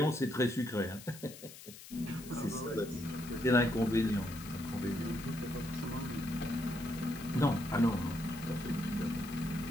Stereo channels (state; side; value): noise; left; hiss, 16 dB below the sound